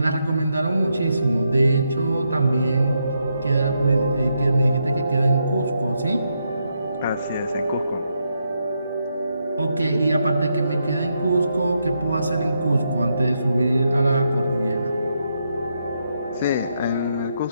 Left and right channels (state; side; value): inverted; both; correlation -0.81